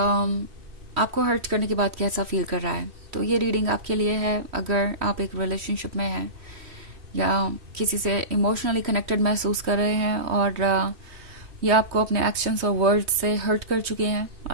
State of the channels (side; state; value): left; late; 3.1 ms